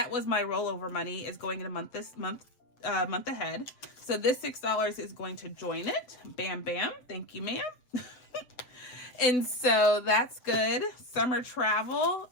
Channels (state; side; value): late; right; 7.8 ms